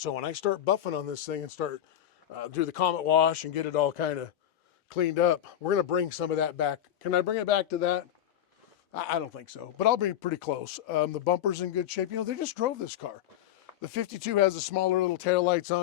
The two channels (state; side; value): quieter; right; 11.1 dB